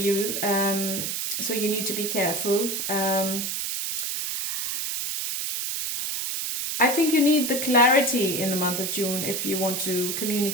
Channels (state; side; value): noise; right; hiss, 2 dB below the sound